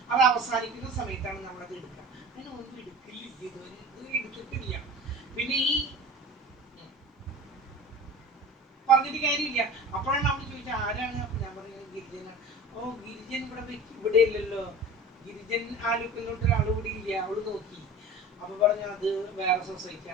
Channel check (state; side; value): normal; both; correlation 0.38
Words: അത് അവസാനിക്കുന്ന സമയത്താണ് നമ്മളത് എടുക്കുക. അങ്ങനെ ഒന്നും എടുക്കില്ല, ഇതുവരെ എടുത്തിട്ടില്ല. പിന്നെ ഈ പറഞ്ഞിട്ട് കാര്യമില്ല. അപ്പോഴാണ് അവൾ ചോദിച്ചത് ആരാണ്. അപ്പൊ ഞാൻ പറഞ്ഞത് ഗിരിജനാണ്. ഓ, ഗിരിജൻ ഇവിടെ ഇല്ലല്ലോ, ഗിരിജൻ ആലുക്കല്ലോട്ട് ഒരാൾ കൂടി ഇല്ല. അവള് നോക്കി, അപ്പൊ പറഞ്ഞു അത് വേറെ